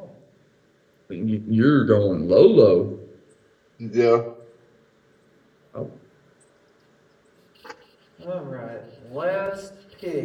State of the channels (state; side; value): identical; both; correlation 1.00